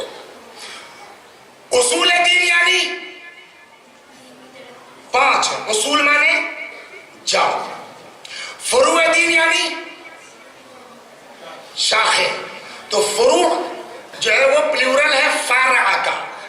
اصول دین یعنی 5 ہے. اصول مانے جاؤ, فروع دین یعنی شاخیں. تو فروع جو ہے وہ پلیورل ہے فرع کا,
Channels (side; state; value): both; identical; correlation 1.00